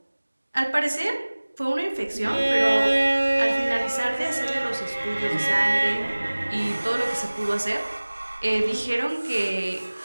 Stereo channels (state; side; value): inverted; both; correlation -1.00